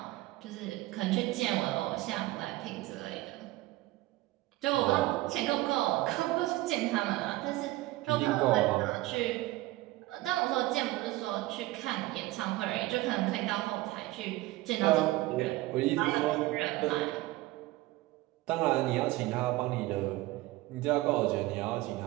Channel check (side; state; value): left; quieter; 18.4 dB